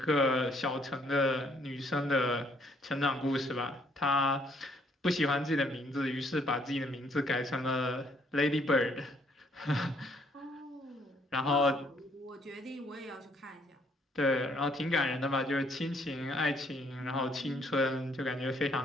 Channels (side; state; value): both; normal; correlation 0.67